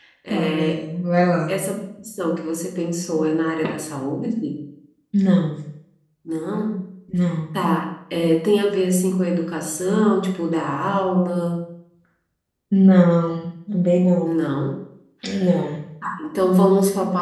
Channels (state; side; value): identical; both; correlation 1.00